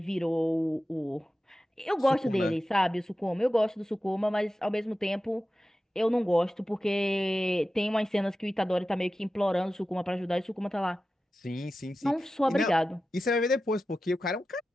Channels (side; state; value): both; normal; correlation 0.93